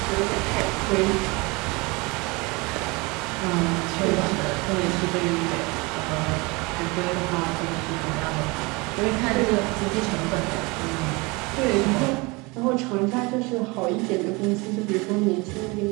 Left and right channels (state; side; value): quieter; left; 26.0 dB